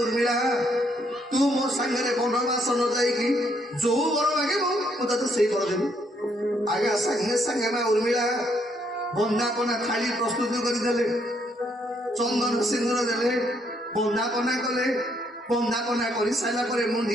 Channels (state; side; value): normal; both; correlation 0.71